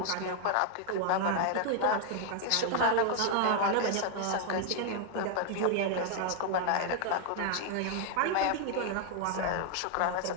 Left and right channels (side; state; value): both; different; correlation 0.00